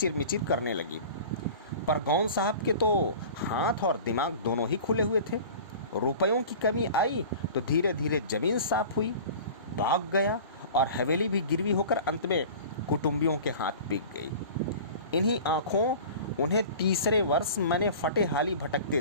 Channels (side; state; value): both; inverted; correlation -0.39